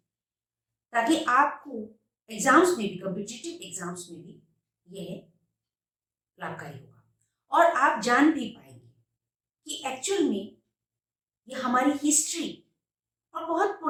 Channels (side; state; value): both; identical; correlation 1.00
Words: ताकि आपको एग्जाम्स में भी, कॉम्पिटिटिव एग्जाम्स में भी यह लाभकारी होगा और आप जान भी पाएंगे कि एक्चुअल में ये हमारी हिस्ट्री और बहुत